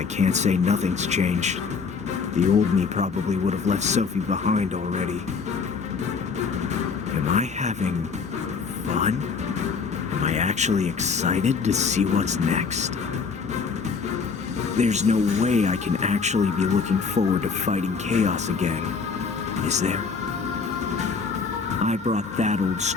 can't say nothing's changed. The old me probably would have left Sophie behind already. Am I having fun? Am I actually excited to see what's next? There's no way I can actually be looking forward to fighting chaos again, is there? I brought that old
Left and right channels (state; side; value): quieter; right; 5.3 dB